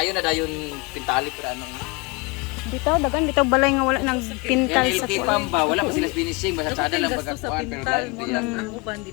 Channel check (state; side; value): quieter; right; 27.5 dB